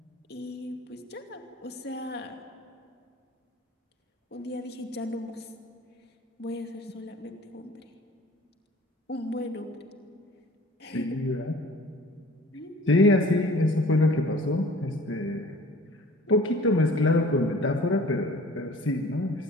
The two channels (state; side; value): normal; both; correlation 0.48